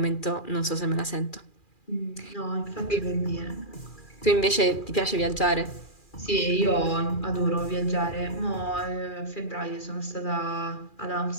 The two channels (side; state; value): right; late; 2.4 ms